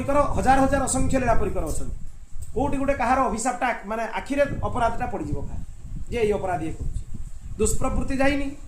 हजार हजार असंख्य लीला परिकर अच्छा कौटी गोटे कहार अभिशापटा माने आखिरे अपराधटा पड़ जाए जे ये अपराध ये कर दुष्प्रवृत्ति जाइनी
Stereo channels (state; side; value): identical; both; correlation 1.00